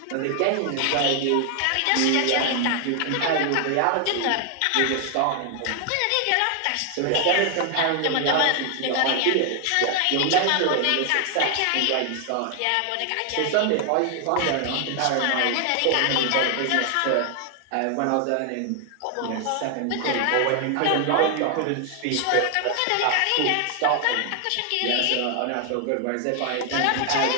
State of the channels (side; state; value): both; different; correlation 0.00